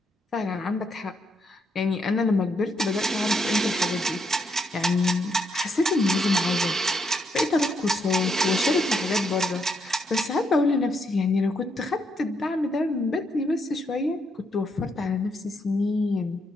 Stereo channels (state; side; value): normal; both; correlation 0.76